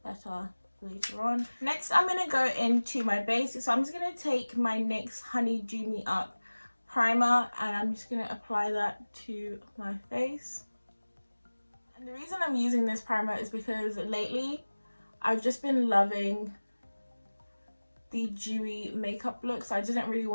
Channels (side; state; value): both; inverted; correlation -1.00